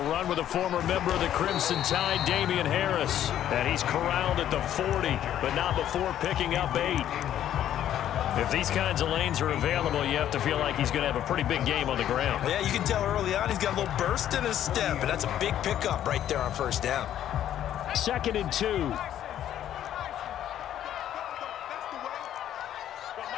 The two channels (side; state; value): right; quieter; 11.2 dB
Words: run with a former member of the Crimson Tide, Damian Harris. And he's corralled at the 40, but not before picking up 8. If these kinds of lanes are available, you have to feel like he's going to have a pretty big game on the ground. Yeah, you can tell early on he's got a little burst in his step, and that's a big pickup right there on first down. 2nd and 2.